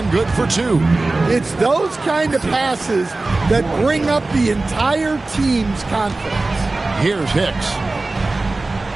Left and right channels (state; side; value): quieter; left; 3.2 dB